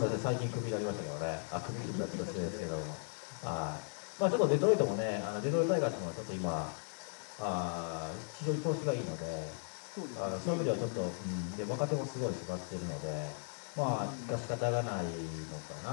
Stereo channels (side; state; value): right; silent; 53 dB below the other